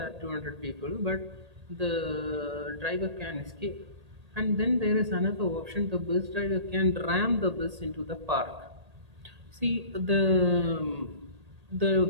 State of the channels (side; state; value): left; late; 1.8 ms